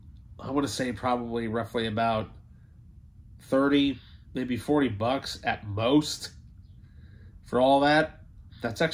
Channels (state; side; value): identical; both; correlation 1.00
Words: I want to say probably roughly about 30, maybe 40 bucks at most for all that. That's